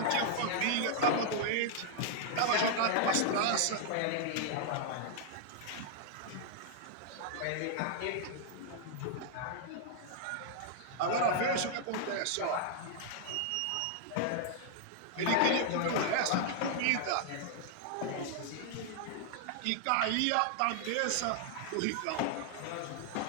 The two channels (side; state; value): both; different; correlation 0.00